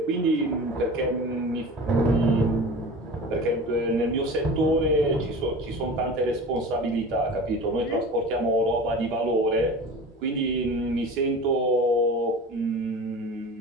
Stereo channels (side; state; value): both; normal; correlation 0.35